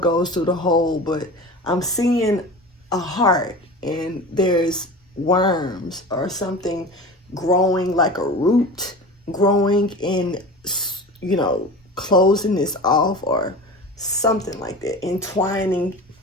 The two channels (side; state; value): both; normal; correlation 0.33